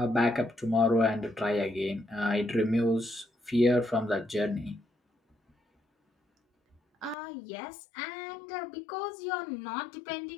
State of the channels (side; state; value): right; drops out; at 7.2 s